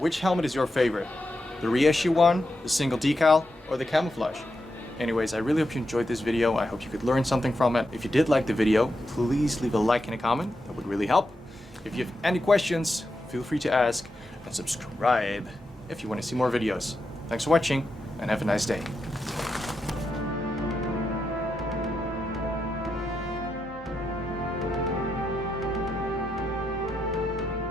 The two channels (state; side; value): normal; both; correlation 0.86